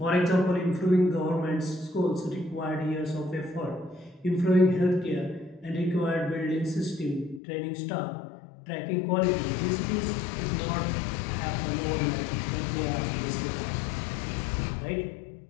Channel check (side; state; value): right; drops out; at 7.4 s